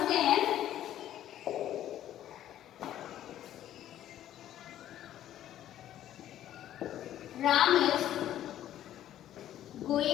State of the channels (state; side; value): quieter; right; 12.0 dB